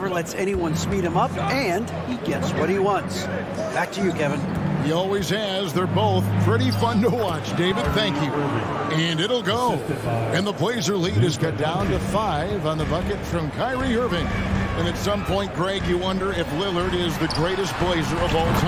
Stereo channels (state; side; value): identical; both; correlation 1.00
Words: lets anyone speed him up, and he gets what he wants. Back to you, Kevin. He always has. They're both pretty fun to watch. David, thank you. And it'll go. And the Blazer lead is cut down to 5 on the bucket from Kyrie Irving. And at some point, Greg, you wonder if Lillard is the greatest Blazer of all